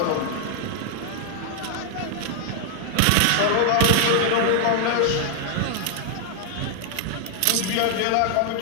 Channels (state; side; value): different; both; correlation 0.00